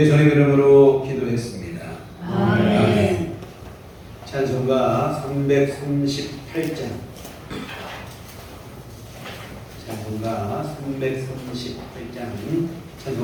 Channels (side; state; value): both; identical; correlation 1.00